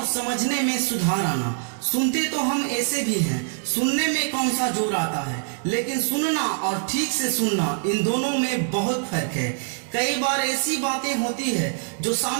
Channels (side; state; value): left; silent; digital silence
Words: समझने में सुधार आना। सुनते तो हम ऐसे भी हैं, सुनने में कौन सा जोर आता है, लेकिन सुनना और ठीक से सुनना, इन दोनों में बहुत फर्क है। कई बार ऐसी बातें होती है जो